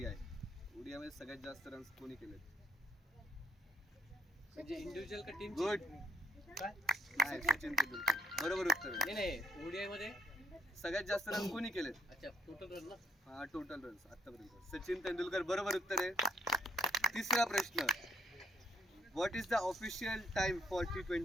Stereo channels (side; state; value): both; normal; correlation 0.69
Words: ODI मध्ये सगळ्यात जास्त रन्स कोणी केलेत? म्हणजे इंडिव्हिज्युअल का टीम? गुड. नाही, सचिन तेंडुलकर. बरोबर उत्तर आहे. नाही ओडीआय मध्ये सगळ्यात जास्त रन कोणी केलेत? अच्छा टोटल रन ना. हा, टोटल रन्स आतापर्यंत सचिन तेंडुलकर. बरोबर उत्तर आहे. तिसरा प्रश्न. What is the official time for